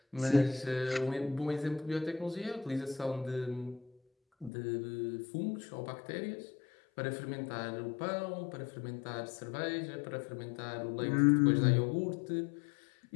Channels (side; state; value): right; drops out; at 4.5 s